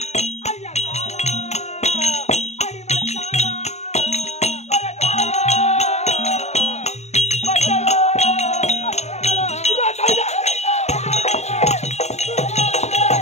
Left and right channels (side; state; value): right; late; 0.32 ms